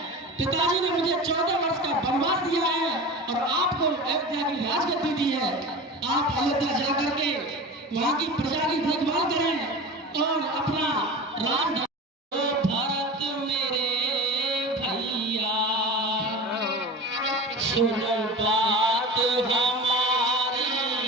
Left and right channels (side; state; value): both; normal; correlation 0.32